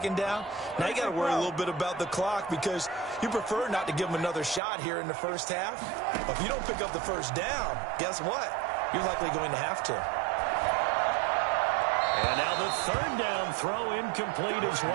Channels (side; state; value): left; drops out; at 4.6 s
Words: down. Now you got to worry a little bit about the clock because you prefer not to give them another shot here in the 1st half. But if you don't pick up the 1st down, guess what? You're likely going to have to. And now the 3rd down throw incomplete as